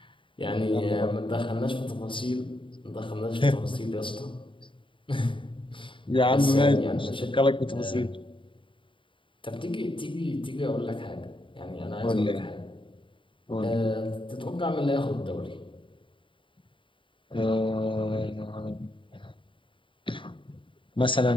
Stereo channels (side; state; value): right; late; 0.25 ms